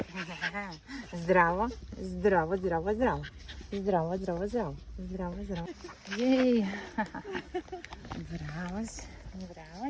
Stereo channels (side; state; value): both; identical; correlation 1.00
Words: Здраво. Здраво, здраво, здраво. Здраво, здраво, здраво. Здраво, здраво. Єй. Бравося.